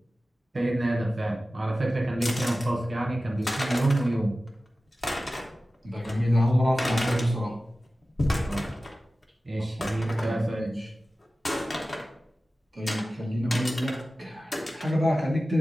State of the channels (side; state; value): both; normal; correlation 0.95